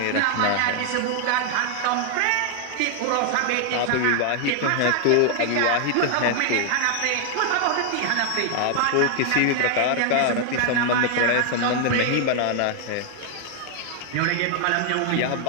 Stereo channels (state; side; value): different; both; correlation 0.00